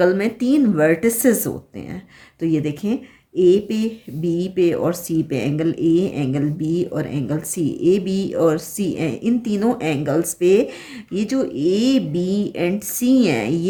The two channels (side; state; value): both; identical; correlation 1.00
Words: में 3 वर्टिसेस होते हैं। तो ये देखें, A पे, B पे और C पे एंगल A, एंगल B और एंगल C। AB और C, इन तीनों एंगल्स पे ये जो AB एंड C हैं